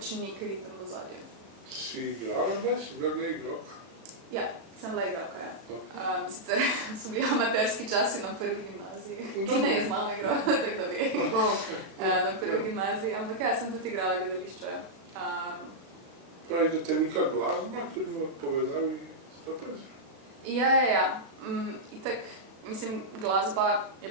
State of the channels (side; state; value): left; late; 36 ms